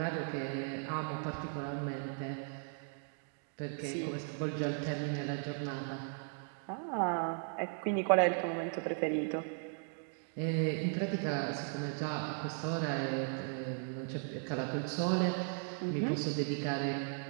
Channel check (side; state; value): left; silent; 53 dB below the other